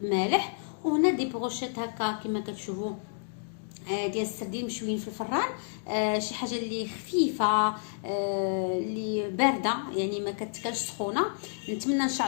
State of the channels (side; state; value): right; silent; digital silence